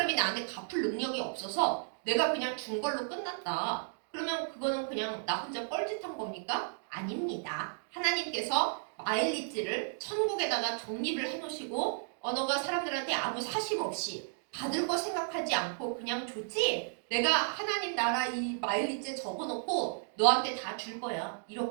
나한테 갚을 능력이 없어서 내가 그냥 준 걸로 끝났다. 그러면 그거는 그냥 나 혼자 뻘짓한 겁니까? 아닙니다. 하나님께서 마일리지를 천국에다가 적립을 해놓으시고 너가 사람들한테 아무 사심 없이 받을 거 생각하지 않고 그냥 줬지? 내가 하나님 나라 이 마일리지에 적어놓고 너한테 다 줄 거야.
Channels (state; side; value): silent; left; digital silence